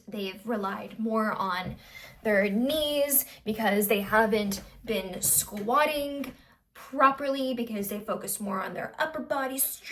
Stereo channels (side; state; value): both; identical; correlation 1.00